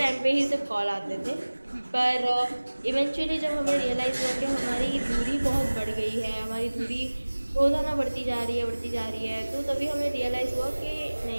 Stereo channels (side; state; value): both; inverted; correlation -1.00